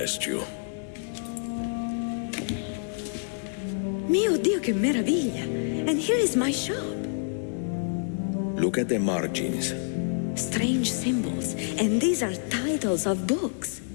you. Mio Dio, che meraviglia! And here is my shop. Look at the margins. Strange symbols, and these are titles of books.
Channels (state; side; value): silent; right; digital silence